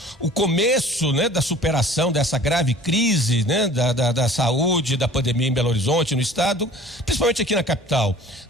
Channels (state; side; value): normal; both; correlation 0.47